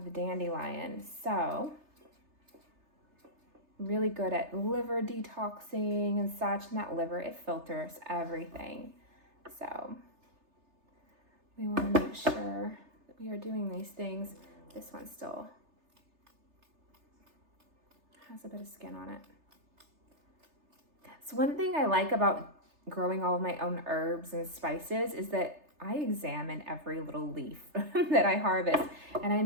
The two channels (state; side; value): late; left; 3.3 ms